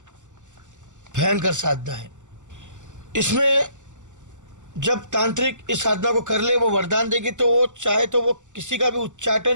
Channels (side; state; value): left; late; 0.85 ms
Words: भयंकर साधना है। इसमें जब तांत्रिक इस साधना को कर ले, वो वरदान देगी, तो वो चाहे तो वो किसी का भी